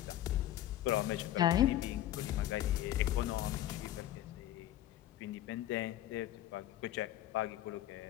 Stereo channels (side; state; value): right; quieter; 13.2 dB